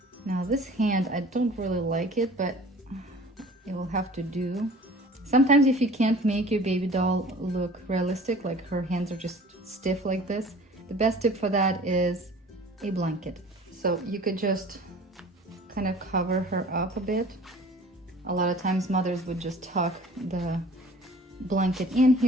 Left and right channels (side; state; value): both; normal; correlation 0.46